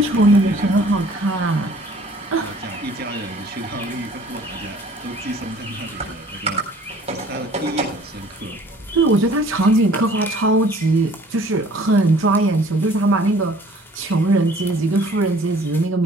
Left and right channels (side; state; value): both; normal; correlation 0.54